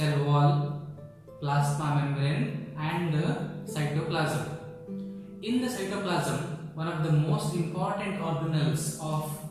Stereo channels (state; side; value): identical; both; correlation 1.00